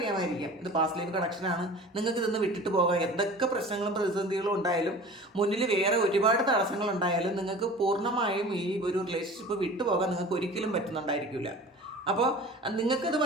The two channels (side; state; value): both; normal; correlation 0.40